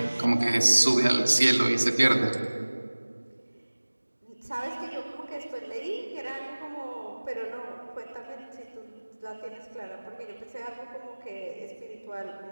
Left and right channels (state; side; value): inverted; both; correlation -1.00